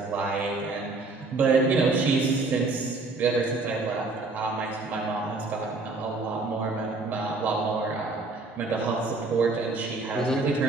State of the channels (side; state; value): left; quieter; 3.6 dB